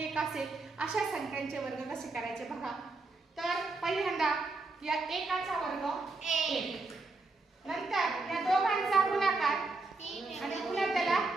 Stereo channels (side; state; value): left; quieter; 3.5 dB